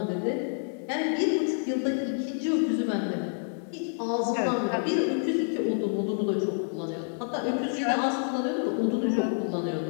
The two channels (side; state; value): right; silent; 59 dB below the other